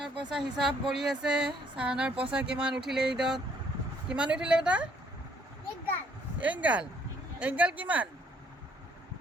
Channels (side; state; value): both; normal; correlation 0.66